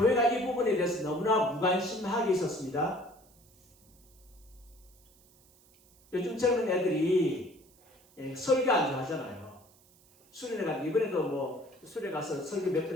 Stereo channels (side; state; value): right; noise; hiss, 29 dB below the sound